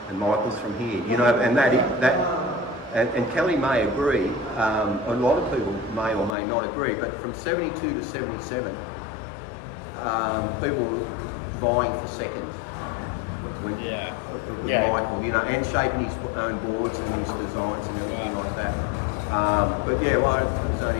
and Michael's from here, and Kelly may agree. A lot of people may or may not agree, but from 72 to 77, people were vying for second. With Michael, and shaping his own boards and his designs and everything like that. I was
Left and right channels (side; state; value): right; drops out; at 6.4 s